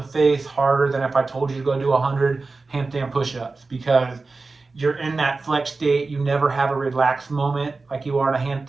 face harder than if I told you to go do 100 handstand push-ups, because you're in that flex state. You never have a relaxed moment like you are in a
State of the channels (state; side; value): quieter; left; 3.8 dB